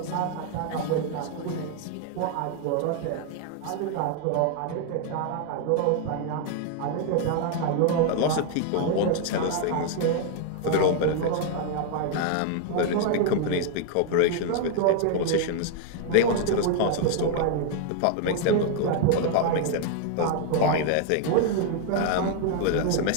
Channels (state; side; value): different; both; correlation 0.00